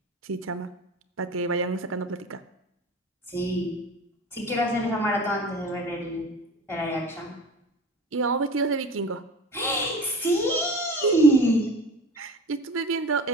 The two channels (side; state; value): both; normal; correlation 0.37